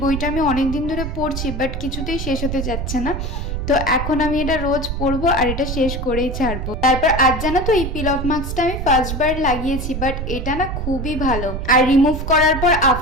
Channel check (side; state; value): right; noise; rumble, 4 dB below the sound